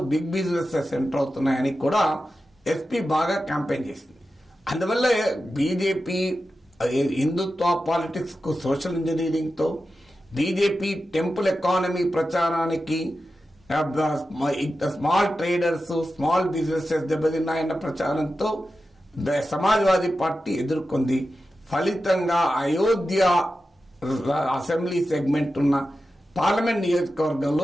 బిగ్ బిజినెసెస్ ఎంటర్ అవుతున్నాయని కూడా ఎస్పీ బాగా క్యాంపెయిన్ చేసింది. అందువల్ల బీజేపీ హిందుత్వ పాలిటిక్స్ కు సోషల్ ఇంజనీరింగ్ తో, బీజేపీ టెంపుల్ ఎకానమీ ప్రచారానికి స్మాల్ ట్రేడర్స్, స్మాల్ బిజినెసెస్ దెబ్బతిన్నాయన్న ప్రచారంతో సమాజ్వాదీ పార్టీ ఎదుర్కొంది. ఫలితంగా అయోధ్య అసెంబ్లీ సెగ్మెంట్ ఉన్న పార్లమెంట్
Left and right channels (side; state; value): both; normal; correlation 0.92